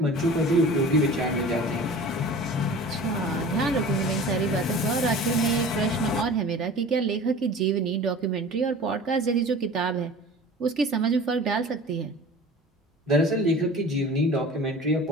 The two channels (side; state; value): both; normal; correlation 0.40